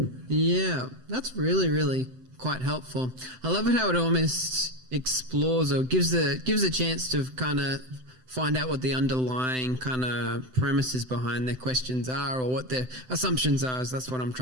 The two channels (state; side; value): late; left; 7.8 ms